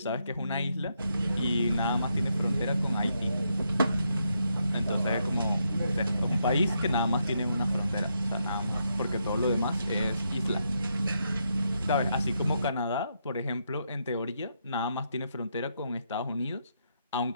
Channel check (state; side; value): inverted; both; correlation -0.79